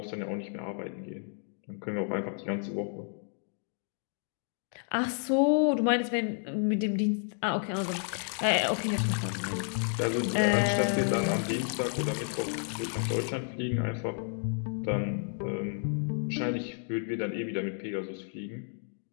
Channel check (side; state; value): right; silent; 57 dB below the other